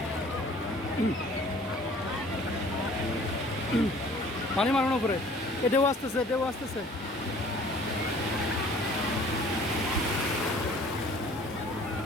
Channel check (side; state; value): both; normal; correlation 0.51